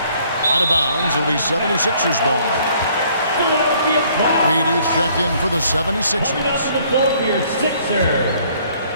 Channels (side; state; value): both; inverted; correlation -0.61